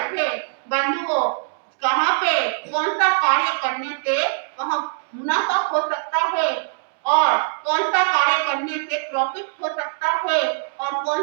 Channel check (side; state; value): left; silent; digital silence